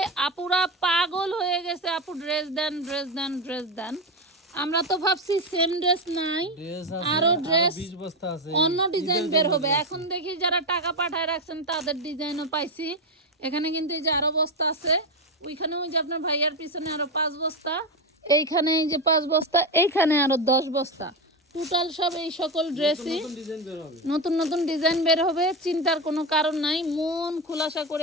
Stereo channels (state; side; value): normal; both; correlation 0.14